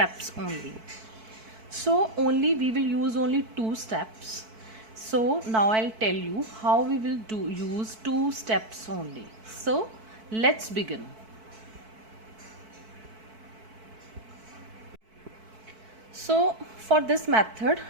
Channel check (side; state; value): left; late; 4.5 ms